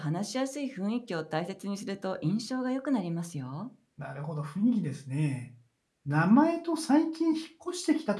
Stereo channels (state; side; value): identical; both; correlation 1.00